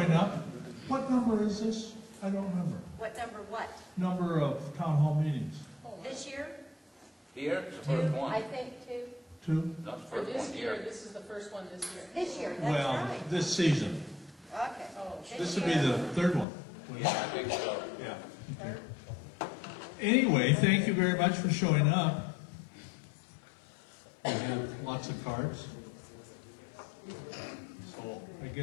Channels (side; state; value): right; drops out; at 16.4 s